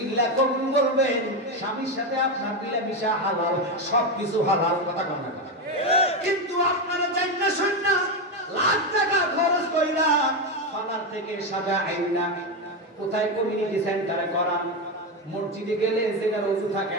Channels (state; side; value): normal; both; correlation 0.11